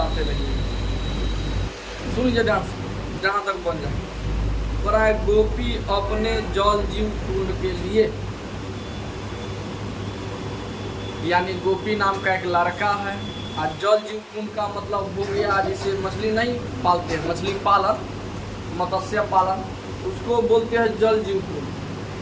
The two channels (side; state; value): both; identical; correlation 1.00